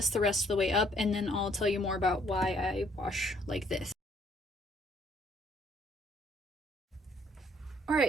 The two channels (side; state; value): both; normal; correlation 0.64